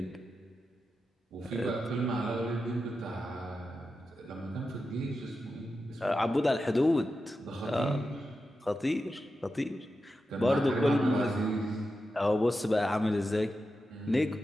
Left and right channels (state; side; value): normal; both; correlation 0.90